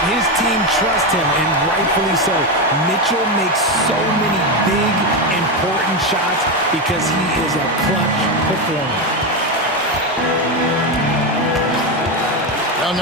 His team trusts him, and rightfully so. Mitchell makes so many big, important shots because he is a clutch performer. Young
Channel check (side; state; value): both; normal; correlation 0.11